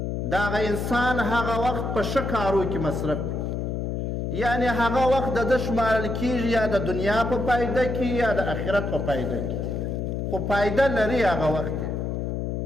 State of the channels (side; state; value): left; noise; hum, 2 dB below the sound